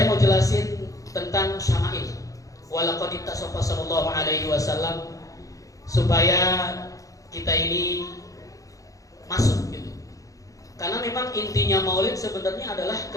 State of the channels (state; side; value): late; right; 0.16 ms